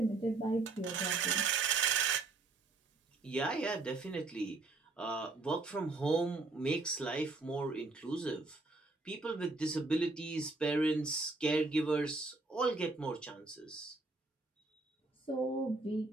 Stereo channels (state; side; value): quieter; left; 3.5 dB